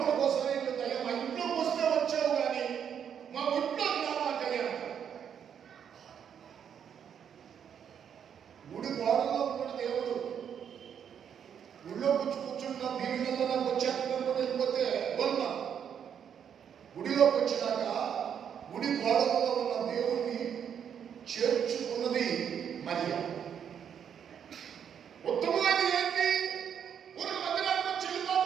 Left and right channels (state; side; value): quieter; left; 8.2 dB